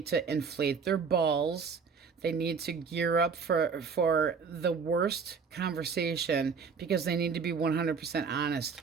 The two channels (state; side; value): quieter; left; 5.7 dB